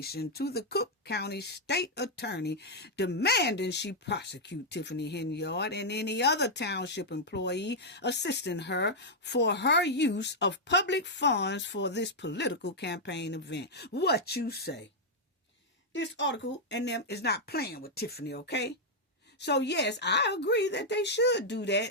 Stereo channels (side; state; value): both; normal; correlation -0.04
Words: to the Cook County State Attorney, demanding she prosecute Tiffany Henyard and any other township employee assisting her for her use of public funds for this political campaign event. What you say? This article and them is not playing with Tiffany, okay? So yes, I agree that they should do